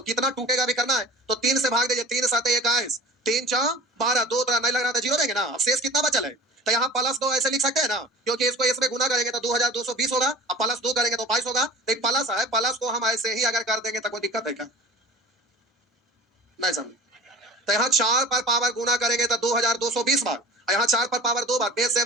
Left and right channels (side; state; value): both; normal; correlation 0.41